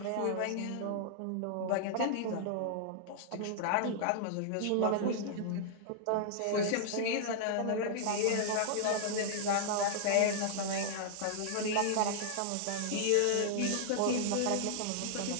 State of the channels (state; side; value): different; both; correlation -0.01